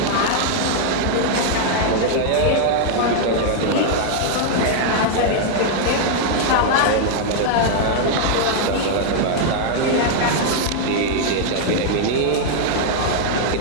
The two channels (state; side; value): different; both; correlation 0.00